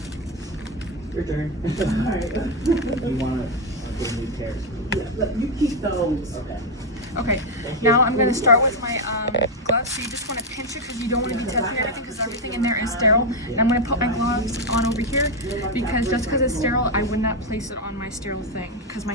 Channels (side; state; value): both; normal; correlation 0.05